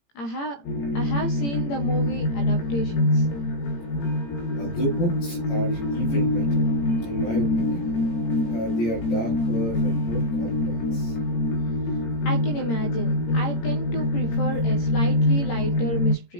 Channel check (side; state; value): right; late; 18 ms